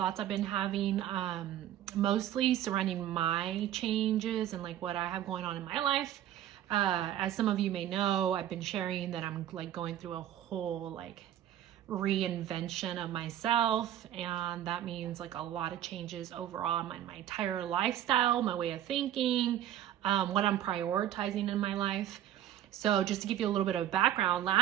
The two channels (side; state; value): left; quieter; 11.7 dB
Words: I've been having, mostly surrounding my changes and like what I have going on in my life. As some of you may know, I've been sharing that I'm like going through a whole like reinvention of myself, and that means like a lot of changes overall in my entire lifestyle, my way of thinking, what I'm prioritizing in my life. So just to give you a little bit of background,